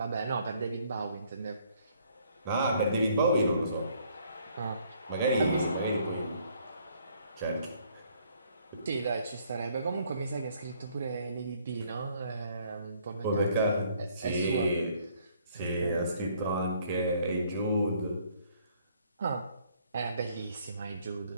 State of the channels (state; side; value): inverted; both; correlation -0.64